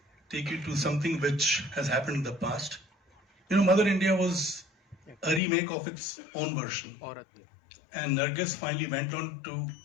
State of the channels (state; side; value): drops out; right; at 5.4 s